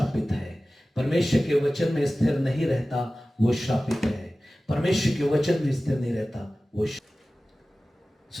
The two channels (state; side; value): normal; both; correlation 0.96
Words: है। परमेश्वर के वचन में स्थिर नहीं रहता वो श्रापित है। परमेश्वर के वचन में स्थिर नहीं रहता वो।